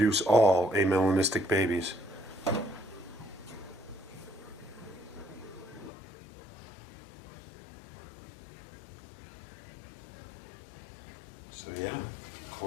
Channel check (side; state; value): right; drops out; at 5.9 s